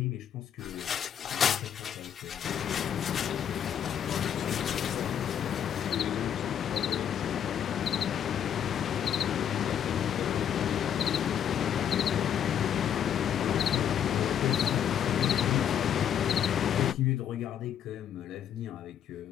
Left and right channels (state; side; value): quieter; right; 9.2 dB